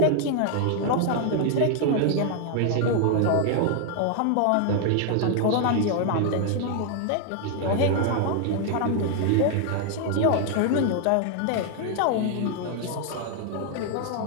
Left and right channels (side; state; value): both; different; correlation 0.00